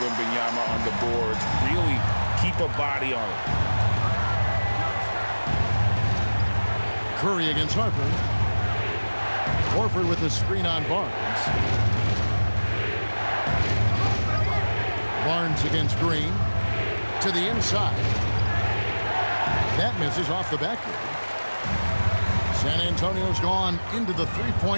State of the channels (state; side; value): inverted; both; correlation -1.00